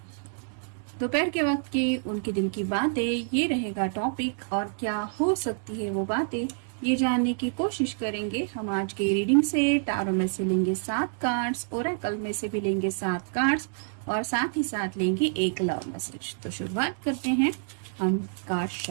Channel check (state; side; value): silent; left; digital silence